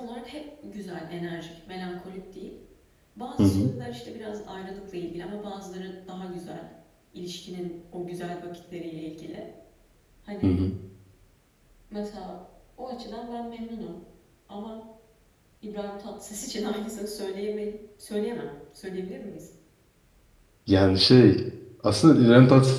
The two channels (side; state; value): both; identical; correlation 1.00